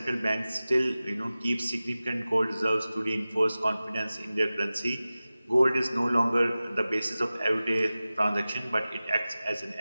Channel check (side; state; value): both; inverted; correlation -0.96